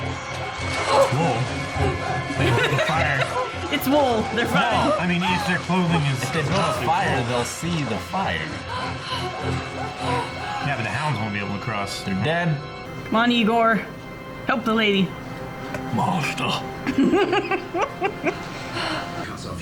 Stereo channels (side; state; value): both; identical; correlation 1.00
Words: Whoa. They lit the fire. It's wool. They're fine. No, I mean, if their clothing is. If they build a fire, they'll see the fire. Yeah, but the hounds won't be able to cross. They're dead. Come on, Igor. Help the lady. Monster. Cuts